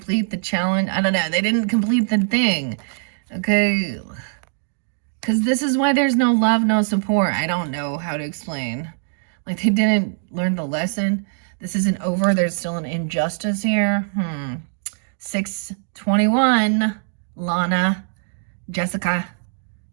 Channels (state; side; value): silent; left; digital silence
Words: the challenge. I don't know. They didn't complete the thing. Okay, because this is why there's no love, no support. I don't know how to explain. Like, they didn't learn the lesson. This isn't over. There's still an injustice here. 621, Lana, Jessica,